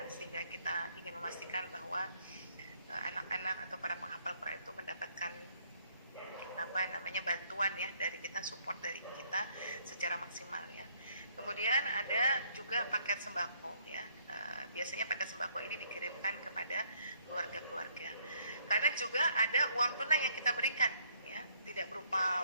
sehingga kita ingin memastikan bahwa anak-anak atau para penghafal Quran itu mendapatkan bantuan ya dari kita, support dari kita secara maksimal ya. Kemudian ada juga paket sembako ya. Biasanya paket sembako ini dikirimkan kepada keluarga-keluarga. Karena juga ada uang tunai yang kita berikan ya, tidak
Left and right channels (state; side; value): inverted; both; correlation -0.67